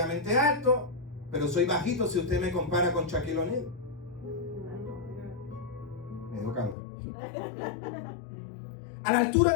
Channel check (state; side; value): drops out; right; at 6.8 s